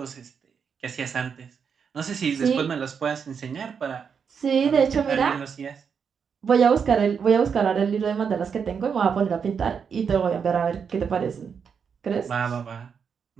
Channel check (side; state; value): left; quieter; 6.6 dB